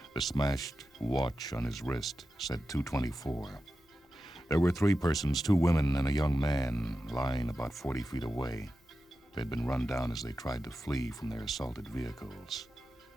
The smashed watch on his wrist said 2:24. There were 3 persons, 2 women and a young man, lying about 40 feet away. They'd been run down as they tried to flee from their assaulted vehicles.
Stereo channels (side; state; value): both; normal; correlation 0.92